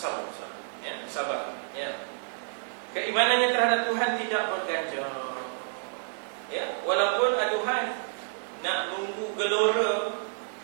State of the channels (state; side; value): silent; left; digital silence